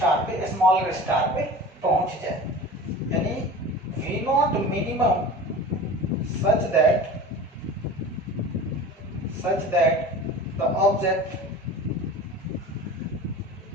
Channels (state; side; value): normal; both; correlation 0.37